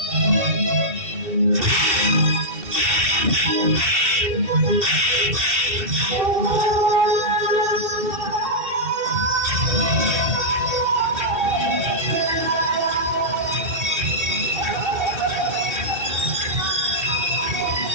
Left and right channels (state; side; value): late; left; 2.7 ms